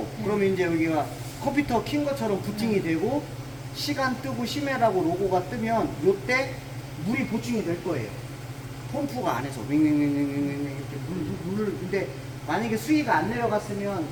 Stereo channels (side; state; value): both; identical; correlation 1.00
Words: 그러면 이제 여기가 컴퓨터 킨 것처럼 부팅이 되고 시간 뜨고 심해라고 로고가 뜨면 요때 물이 보충이 될 거예요. 펌프가 안에서 윙윙윙윙윙 이렇게 물을. 근데 만약에 수위가 안 내려갔으면